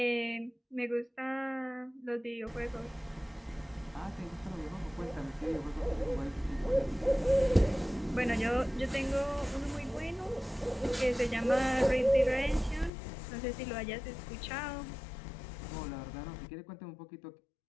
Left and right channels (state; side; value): drops out; right; at 12.9 s